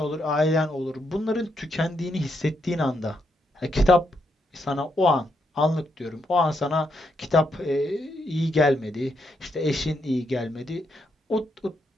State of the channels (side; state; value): both; normal; correlation 0.79